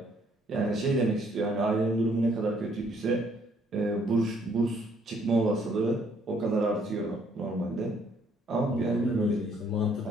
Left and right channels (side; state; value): both; normal; correlation 0.66